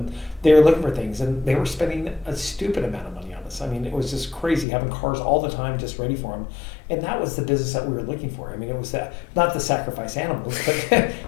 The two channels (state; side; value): drops out; right; at 4.7 s